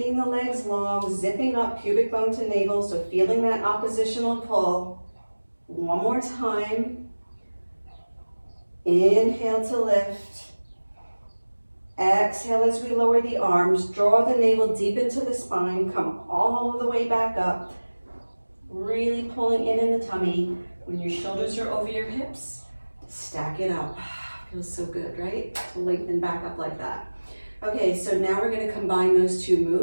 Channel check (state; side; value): inverted; both; correlation -1.00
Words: the legs long, zipping up pubic bone to navel, so feeling that oppositional pull. 1 more time. Inhale to lift. Exhale as we lower the arms. Draw the navel deep into the spine. Come all the way back up. Really pulling in the tummy. When your shoulders are over your hips, stack it up. Feels so good, right? To lengthen back up like that. Okay, so now we're going to combine those 2